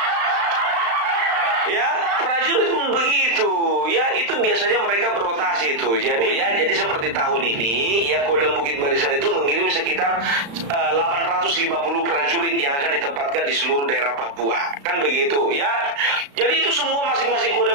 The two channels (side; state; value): left; late; 35 ms